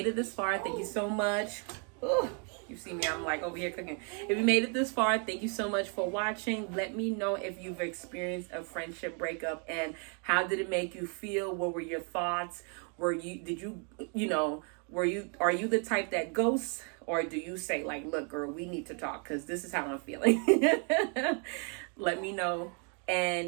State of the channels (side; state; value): left; quieter; 39.2 dB